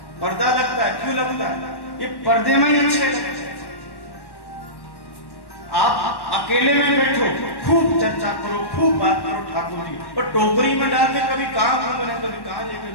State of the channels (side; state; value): right; late; 1.1 ms